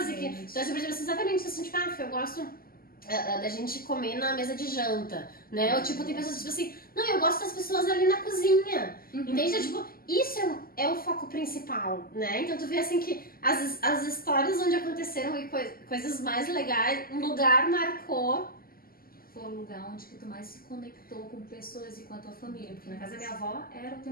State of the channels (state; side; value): late; right; 0.42 ms